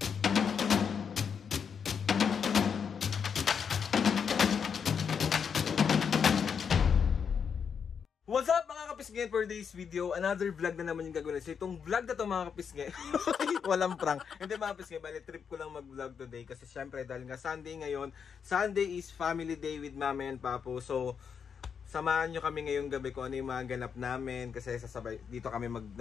What's up mga kapisngin, for today's video, another vlog na naman yung gagawin. So itong vlog na to mga kapisngin, walang prank. Hindi mga kapisngin, bali trip ko lang mag-vlog today kasi syempre dahil nga Sunday ngayon. Sunday is family day with Mami and Papo. So samahan nyo kami ngayong gabi kung ano yung mga ganap namin kasi sasabay dito kami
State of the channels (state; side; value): quieter; right; 6.8 dB